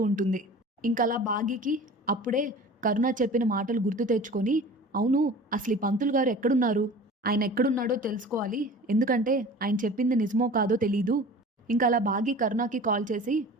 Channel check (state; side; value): normal; both; correlation 0.40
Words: ఉంటుంది. ఇంకలా భాగికి అప్పుడే కరుణ చెప్పిన మాటలు గుర్తు తెచ్చుకొని, అవును అసలు ఈ పంతులు గారు ఎక్కడున్నారు, ఆయన ఎక్కడున్నాడో తెలుసుకోవాలి, ఎందుకంటే ఆయన చెప్పింది నిజమో కాదో తెలీదు. ఇంకా అలా భాగి కరుణకి కాల్ చేసి